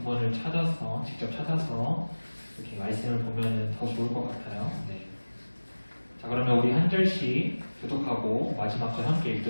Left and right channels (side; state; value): both; inverted; correlation -1.00